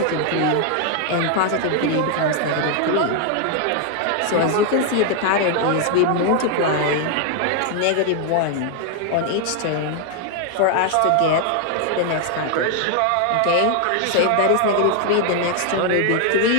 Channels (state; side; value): different; both; correlation 0.00